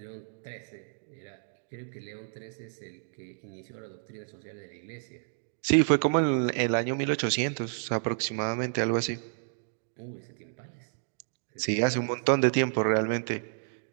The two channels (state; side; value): silent; left; digital silence